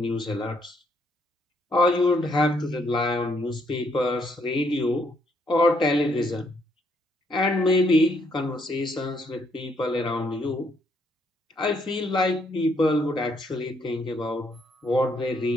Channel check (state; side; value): normal; both; correlation 0.72